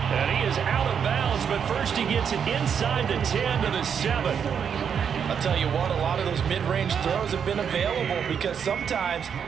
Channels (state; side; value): quieter; left; 7.4 dB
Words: And he is out of bounds, but first he gets it inside the 10 to the 7. I'll tell you what, a lot of those mid-range throws have been available because sometimes